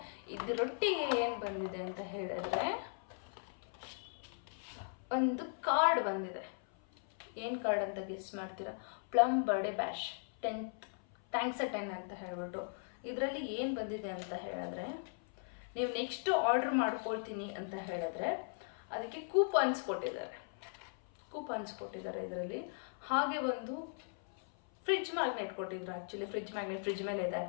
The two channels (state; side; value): silent; right; 52 dB below the other